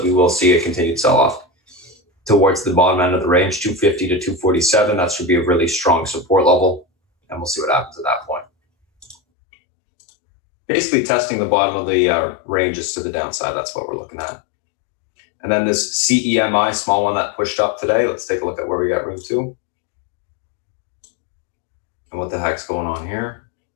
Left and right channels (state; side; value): drops out; right; at 9.2 s